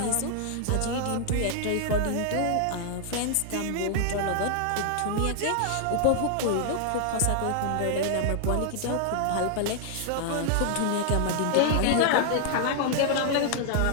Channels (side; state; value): both; different; correlation 0.00